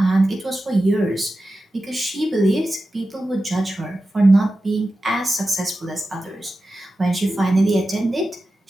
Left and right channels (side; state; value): both; normal; correlation 0.93